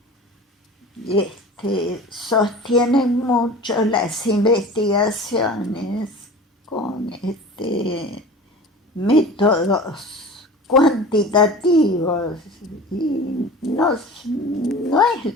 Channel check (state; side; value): normal; both; correlation 0.38